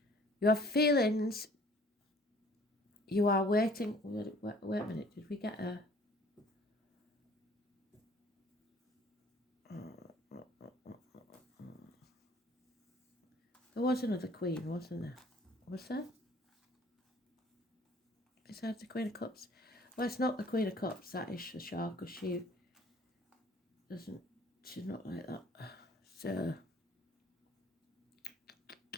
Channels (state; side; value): normal; both; correlation 0.54